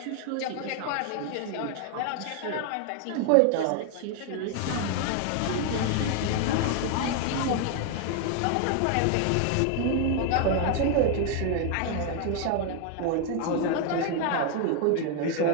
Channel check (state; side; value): different; both; correlation 0.00